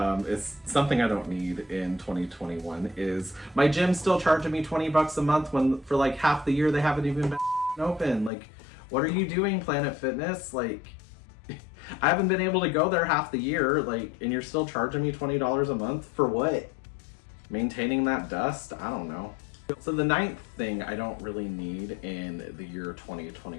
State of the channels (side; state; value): right; drops out; at 8.3 s